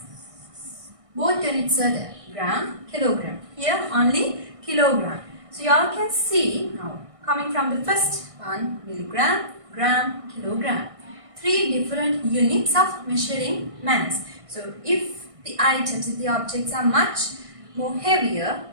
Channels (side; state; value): left; late; 1.6 ms